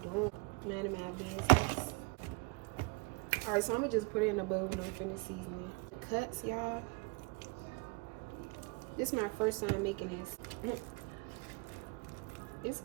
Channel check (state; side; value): quieter; left; 28.3 dB